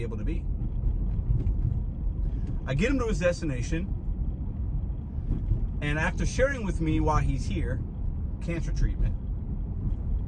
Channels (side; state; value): both; identical; correlation 1.00